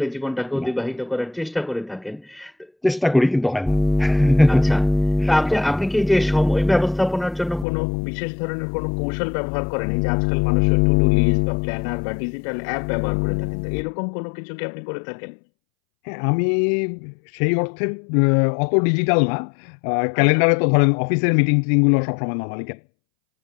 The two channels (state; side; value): drops out; right; at 7.7 s